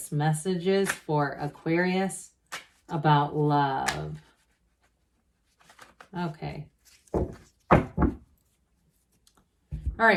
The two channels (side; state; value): both; identical; correlation 1.00